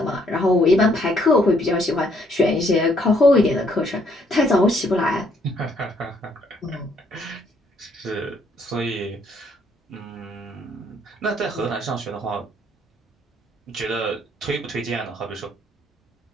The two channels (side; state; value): both; normal; correlation 0.68